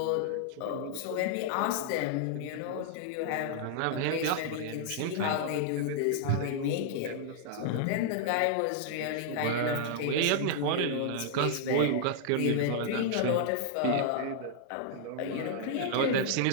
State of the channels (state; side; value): different; both; correlation -0.01